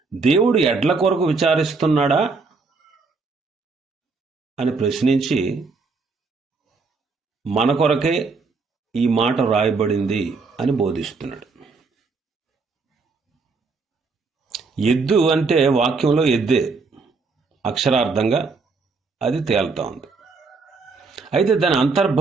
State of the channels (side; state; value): left; quieter; 4.4 dB